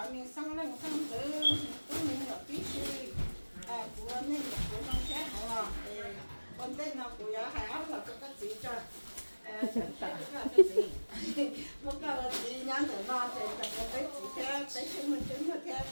miếng xăng lên xăng tử tôi miếng là tí xì con tên nó của hai áo là có cái gì cho cái gì một cái là gì nhắn từ nó thì cái gì theo cái chứng minh theo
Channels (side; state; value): both; inverted; correlation -1.00